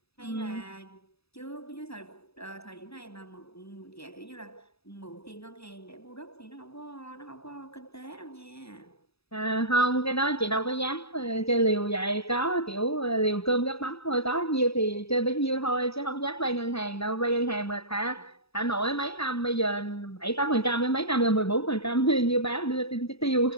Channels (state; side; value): late; right; 0.78 ms